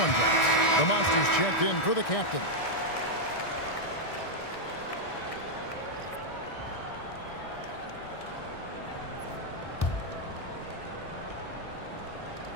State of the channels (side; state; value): right; late; 1.6 ms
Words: drops. The Monsters checked in for the captain.